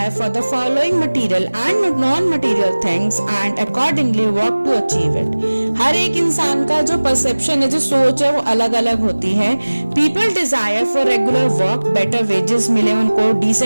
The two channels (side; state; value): both; inverted; correlation -1.00